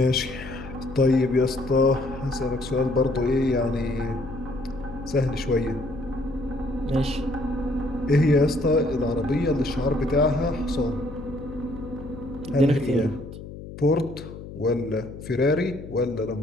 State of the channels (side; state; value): left; noise; hum, 13 dB below the sound